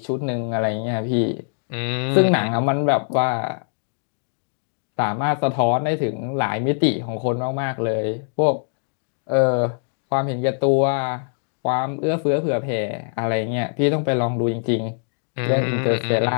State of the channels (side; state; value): right; silent; 64 dB below the other